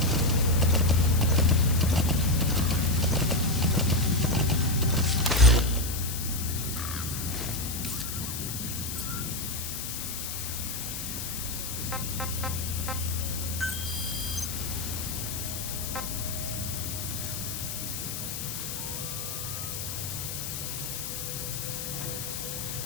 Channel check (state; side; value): noise; left; hiss, 5 dB below the sound